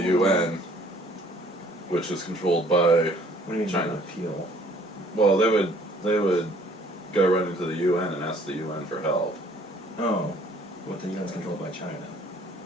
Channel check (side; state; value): both; normal; correlation 0.58